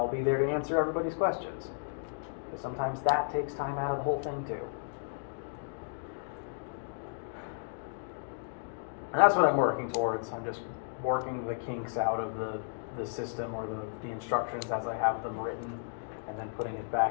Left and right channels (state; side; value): silent; right; digital silence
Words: be there to answer everybody's questions. Because sometimes that takes time out of the whole thing too. And that's what I'm working towards. I'm just working the kinks out of the system or the instructions as I have them written, and then putting it